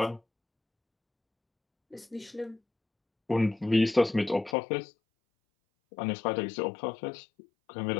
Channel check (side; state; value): right; drops out; at 4.5 s